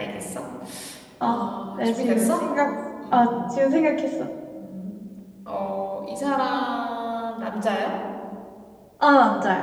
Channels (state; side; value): identical; both; correlation 1.00